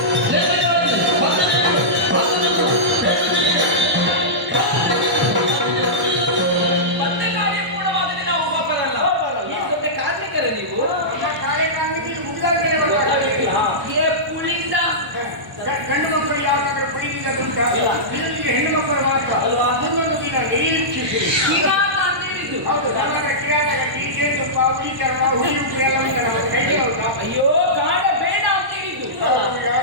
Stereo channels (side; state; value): left; late; 1.0 ms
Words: ಮತ್ತೆ ಕಾರ್ಯ ಪೂರ್ಣವಾಗದೆ ನಾವು ಒಬ್ಬರಲ್ಲ. ಈ ಸೊತ್ತೆ ಕಾರ್ಮಿಕರ ನೀವು? ನಮ್ಮ ಕಾರ್ಯಕ್ರಮಕ್ಕೆ ಇದು ಮುಗಿದಾದ್ಮೇಲೆ ಗೊತ್ತಾಗಲಿಲ್ಲ. ಏ ಪುಳಿಂದ ಗಂಡು ಮಕ್ಕಳು ಯಾವಾಗಾದ್ರೂ ಪುಳಿಯಿಂದ ದುಂಟ ಇಲ್ಲ. ಇದಕ್ಕೆ ಹೆಣ್ಣು ಮಕ್ಕಳು ಮಾತ್ರ ಅಲ್ವಾ? ಮುಂದೊಂದು ದಿನ ನಿರೀಕ್ಷಿಸಿ. ಕಿರಾತ ಅಂತ ಹೇಳಿದ್ದು. ಹೌದು, ನಮಗೆ ಕಿರಾತಗತಿ, ಜೇನುತುಪ್ಪ, ಹುಳಿ ಚರ್ಮ, ಹುಳಿ ಉಪ್ಪು ಎಲ್ಲ ಮುಂದೆ ನಮ್ಮ ಕೈಗೆ ಹೌದಾ? ಅಯ್ಯೋ ಕಾಡ ಬೇಡ ಅಂತ ಹೇಳಿದ್ದು. ನಾವು